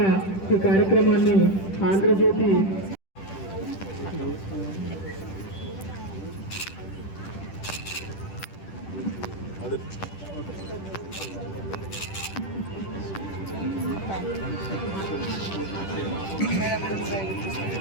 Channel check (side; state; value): right; late; 10 ms